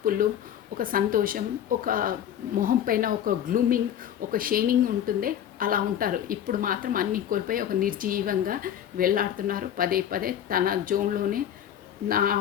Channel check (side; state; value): right; quieter; 10.2 dB